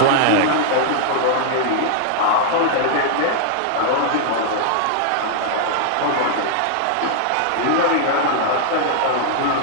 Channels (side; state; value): both; different; correlation 0.00